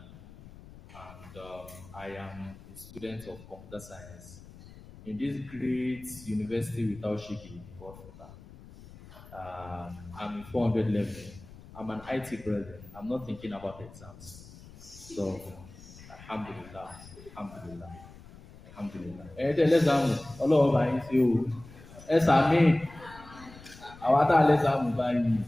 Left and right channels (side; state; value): left; noise; rumble, 19 dB below the sound